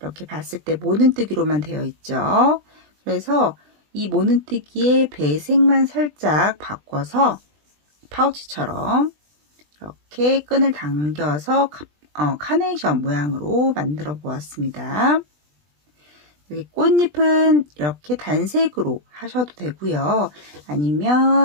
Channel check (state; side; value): late; left; 20 ms